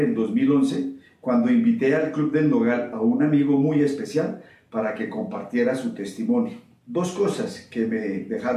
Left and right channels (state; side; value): identical; both; correlation 1.00